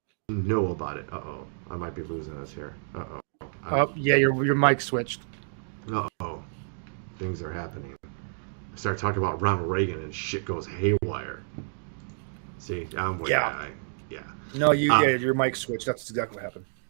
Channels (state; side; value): silent; left; digital silence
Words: know about it. Uh-oh. I might be losing us here. Uh-oh. Oh, yeah, your mic switched. Uh-oh. Things are happening. I start talking about Ronald Reagan and shit goes haywire. See, I'm way No, your mic switched. That's exactly what happened.